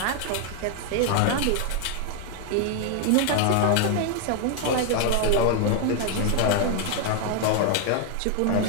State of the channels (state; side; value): different; both; correlation 0.00